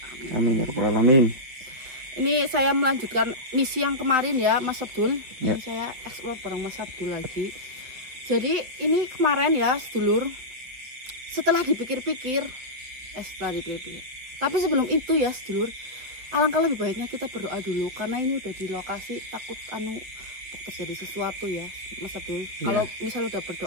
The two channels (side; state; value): left; late; 8.2 ms